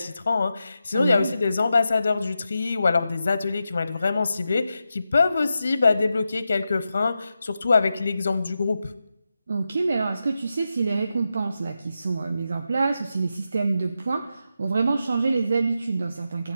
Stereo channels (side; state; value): both; inverted; correlation -0.89